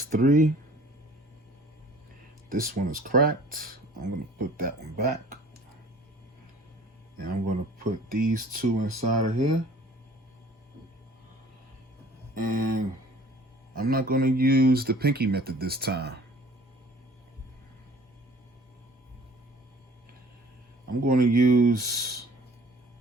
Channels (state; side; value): normal; both; correlation 0.51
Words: 3, this one is cracked. I'm going to put that one back. And I'm going to put these 2 inside of here. And I'm not going to use the pinky method this time. I'm going to use